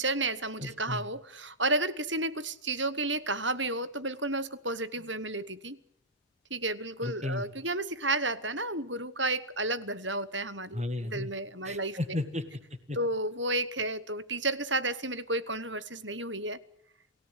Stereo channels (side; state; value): both; normal; correlation -0.11